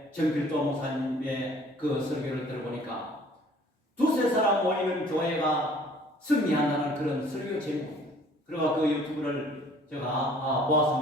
정필도 목사님의 그 설교를 들어보니까 두세 사람 모이는 교회가 승리한다는 그런 설교 제목. 그리고 그 유튜브를 제가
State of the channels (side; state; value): both; normal; correlation 0.54